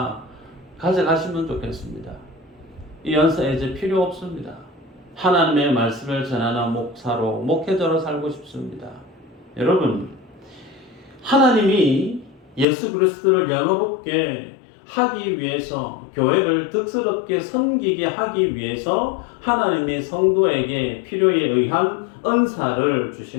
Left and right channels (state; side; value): drops out; right; at 12.7 s